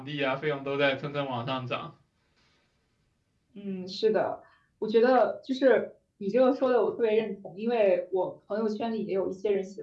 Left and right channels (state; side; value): identical; both; correlation 1.00